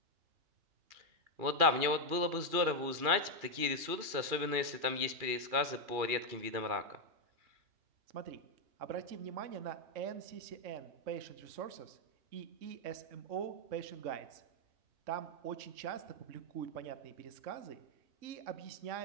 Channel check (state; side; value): late; left; 2.4 ms